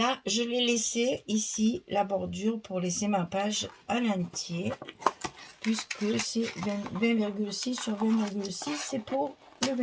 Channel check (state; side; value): identical; both; correlation 1.00